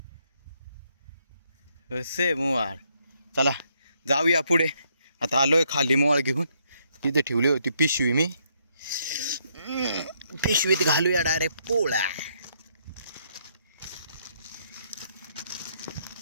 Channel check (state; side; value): inverted; both; correlation -0.73